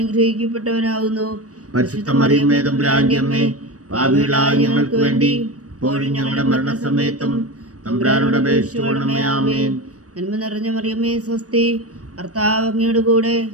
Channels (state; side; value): late; left; 0.66 ms